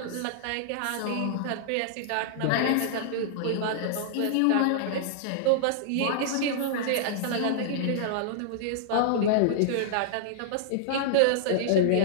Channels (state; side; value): different; both; correlation -0.01